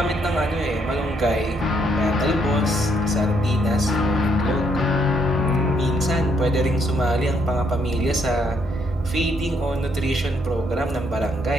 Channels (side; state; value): both; normal; correlation 0.72